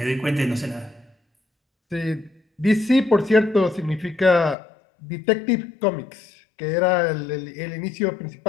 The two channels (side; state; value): right; drops out; at 4.5 s